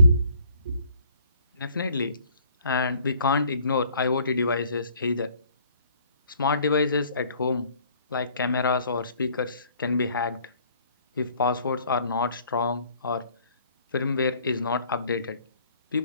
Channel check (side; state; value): both; inverted; correlation -0.59